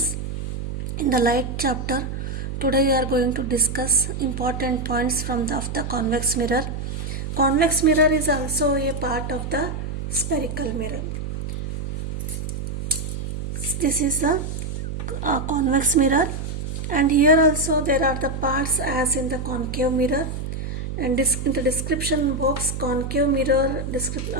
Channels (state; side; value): noise; right; hum, 5 dB below the sound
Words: in the light chapter. Today we are going to discuss important points of the convex mirror. Convex mirror is also a part of the spherical mirror. This is the convex mirror, and here also there are the parts as in the concave mirror, and in the description box concave mirror